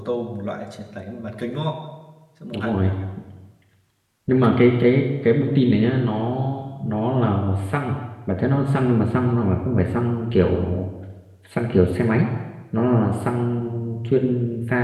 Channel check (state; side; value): identical; both; correlation 1.00